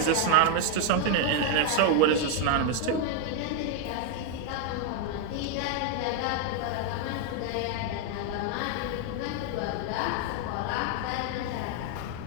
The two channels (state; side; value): different; both; correlation 0.01